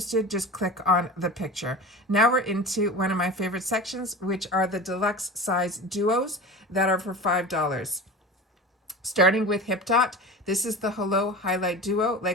just click on the picture. Now we're into one of my favorite sections, which are the deluxe size duos that are for $5. Starting with Hip Dot, this is the Hello Highlight Duo.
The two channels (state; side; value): normal; both; correlation 0.32